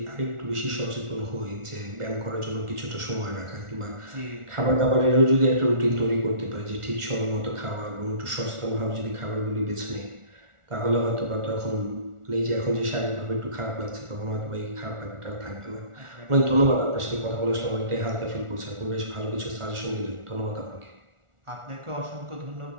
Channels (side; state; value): left; late; 1.4 ms